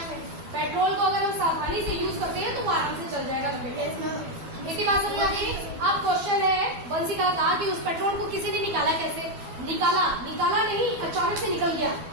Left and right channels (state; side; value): late; left; 12 ms